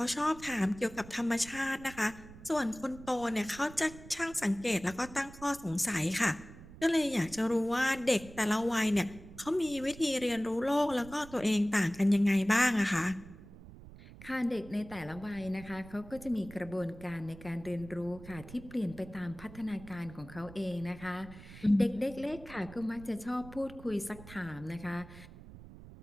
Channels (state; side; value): noise; right; rumble, 17 dB below the sound